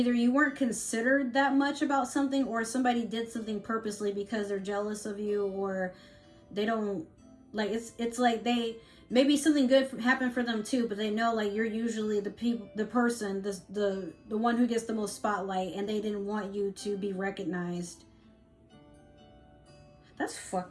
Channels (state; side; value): identical; both; correlation 1.00